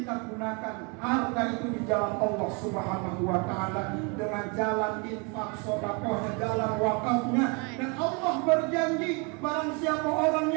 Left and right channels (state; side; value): quieter; left; 32.4 dB